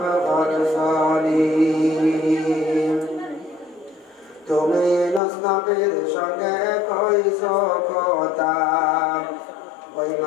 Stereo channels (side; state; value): right; drops out; at 5.2 s